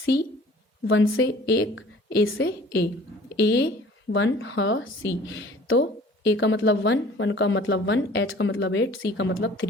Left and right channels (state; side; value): normal; both; correlation 0.50